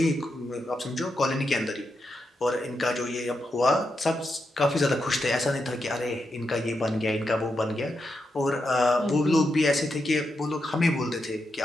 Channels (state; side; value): normal; both; correlation 0.85